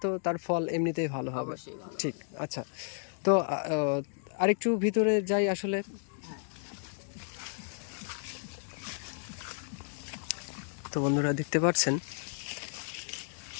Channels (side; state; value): right; silent; digital silence